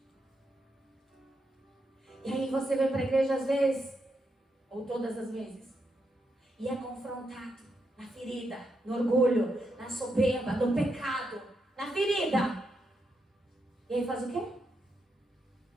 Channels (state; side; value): normal; both; correlation 0.82